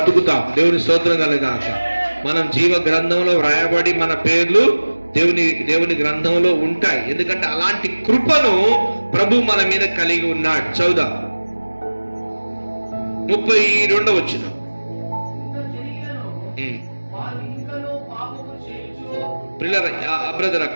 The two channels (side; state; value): both; inverted; correlation -1.00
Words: దేవుని స్తోత్రం కలుగాక. మనం జీవ గ్రంథంలో వ్రాయబడి మన పేర్లు దేవుని గ్రంథంలో ఉంటాయి. ఎందుకంటే అలాంటి కృపను ప్రభు మన మీద కలిగి ఉన్నాడు. చదువుదాం. 32వ వచనం. బ్రదర్